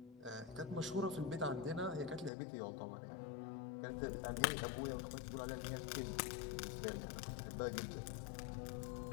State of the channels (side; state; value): right; drops out; at 2.3 s